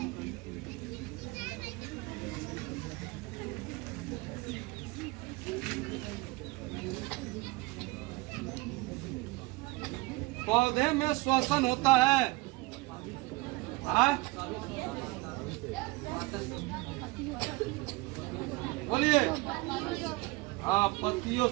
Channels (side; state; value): left; quieter; 22.9 dB